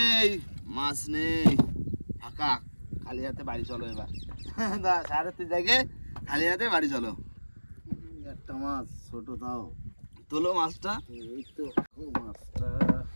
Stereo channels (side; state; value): both; inverted; correlation -1.00